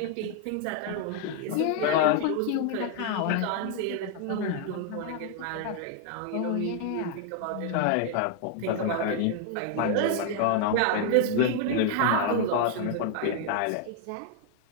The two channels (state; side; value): different; both; correlation 0.00